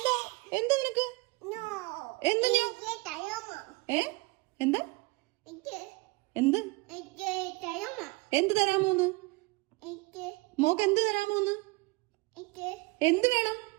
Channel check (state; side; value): quieter; left; 24.4 dB